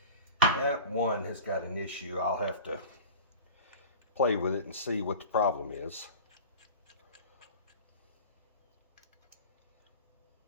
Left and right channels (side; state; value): both; inverted; correlation -0.37